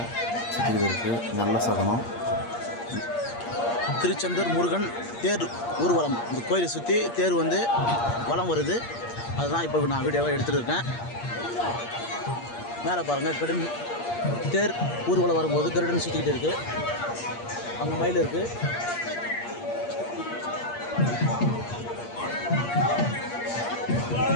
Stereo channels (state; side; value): late; right; 8.6 ms